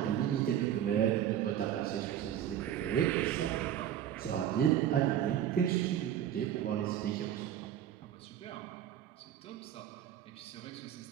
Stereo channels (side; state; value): left; quieter; 10.6 dB